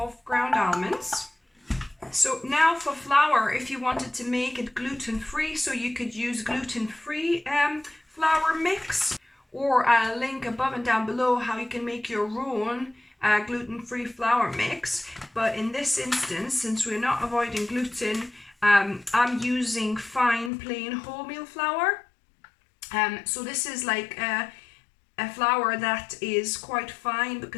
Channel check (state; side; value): drops out; right; at 20.5 s